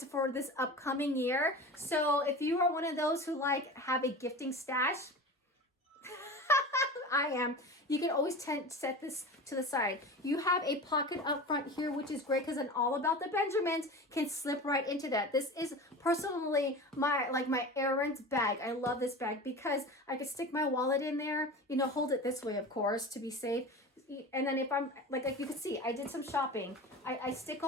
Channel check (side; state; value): both; normal; correlation 0.32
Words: for this upcoming year. So if you are one of those who have a gifting stash, I am. You can always set this to the side. You have a pocket up front here, which is great because an All About the Benjamins can slip right into that. This is personally my errands bag. I love this bag because I can stick my wallet in there, hold it this way, of course, to be safe. And then if I'm, like you can see, I did some shopping. I stick